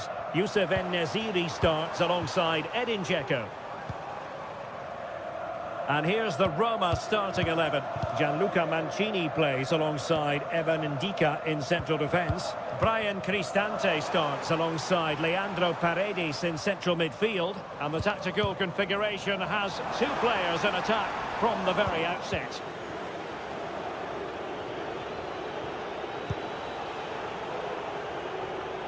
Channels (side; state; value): both; identical; correlation 1.00